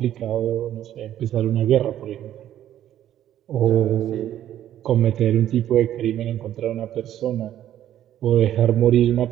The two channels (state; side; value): quieter; left; 11.7 dB